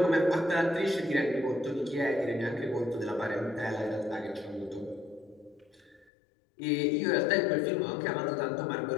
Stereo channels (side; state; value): right; drops out; at 6.1 s